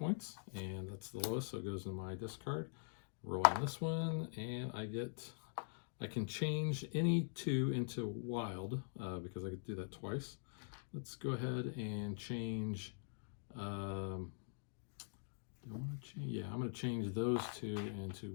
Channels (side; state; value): right; silent; digital silence